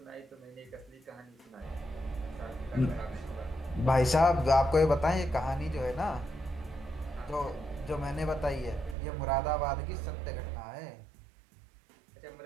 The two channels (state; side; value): drops out; left; at 9.0 s